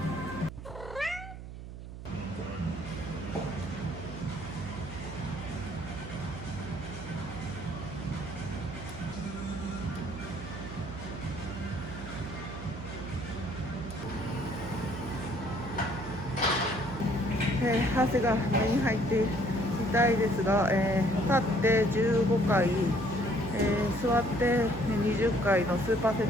汗が目に入って痛いですが、立って15回、座って20回のスーパーセ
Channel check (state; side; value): noise; right; hum, 11 dB below the sound